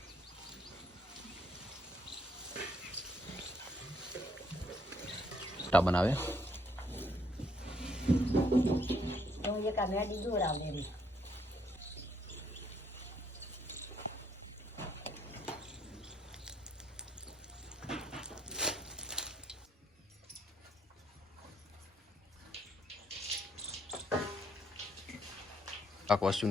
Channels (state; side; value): normal; both; correlation 0.70